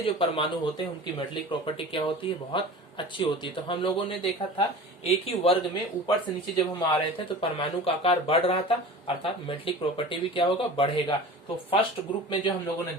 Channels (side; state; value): both; normal; correlation 0.37